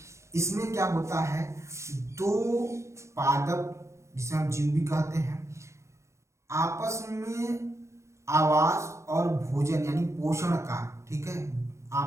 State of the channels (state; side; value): late; left; 0.14 ms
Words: इसमें क्या होता है, दो पादप जिसे हम जीव भी कहते हैं, आपस में आवास और भोजन यानी पोषण का, ठीक है,